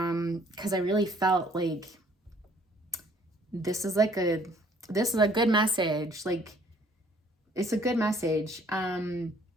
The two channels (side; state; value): both; normal; correlation 0.60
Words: I really felt like this is like a this is a good message. Like, it's a good message. And